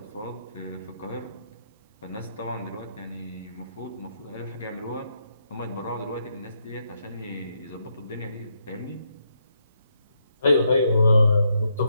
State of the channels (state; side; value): inverted; both; correlation -0.79